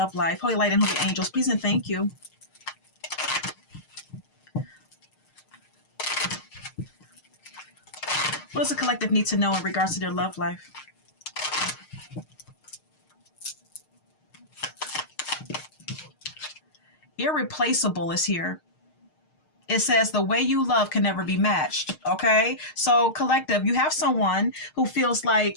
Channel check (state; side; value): late; right; 6.5 ms